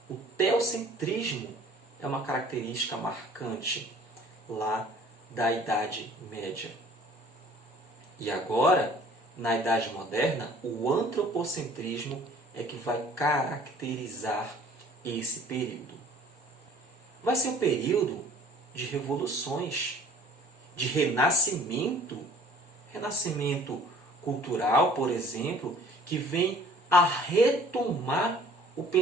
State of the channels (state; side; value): normal; both; correlation 0.52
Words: O teocentrismo é uma característica marcante lá da Idade Média. E agora, na Idade Moderna, o antropocentrismo é que vai caracterizar esse período. Vai ser um período de revoluções, de renascimento cultural, por exemplo, que vem a retomar o